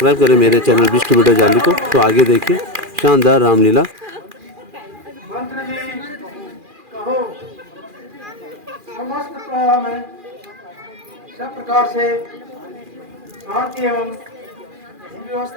करें मेरे चैनल बिस्ट वीडियो जाली को। तो आगे देखिए शानदार रामलीला। मंत्र जी कहो। समस्त प्रवाह में सब प्रकार से शांति एवं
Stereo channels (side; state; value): left; late; 2.4 ms